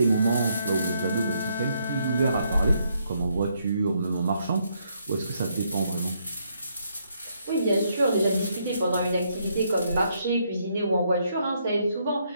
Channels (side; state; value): both; inverted; correlation -0.74